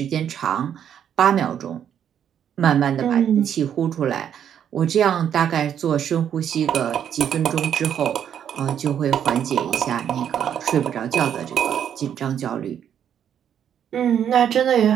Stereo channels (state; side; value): quieter; left; 9.1 dB